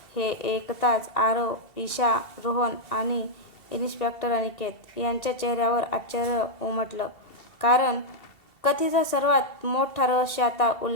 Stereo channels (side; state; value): right; late; 2.7 ms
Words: हे ऐकताच आरव, ईशा, रोहन आणि इन्स्पेक्टर अनिकेत यांच्या चेहऱ्यावर आश्चर्य उमटलं. कारण कथेचं सर्वात मोठं रहस्य आता